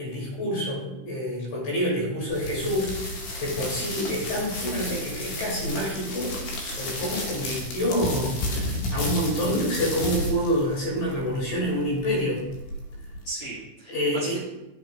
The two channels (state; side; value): late; right; 16 ms